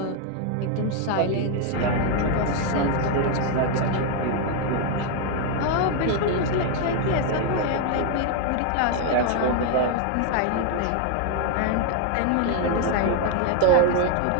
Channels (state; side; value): different; both; correlation 0.01